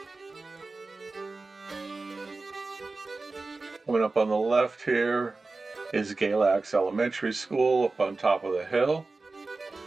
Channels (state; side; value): quieter; left; 3.6 dB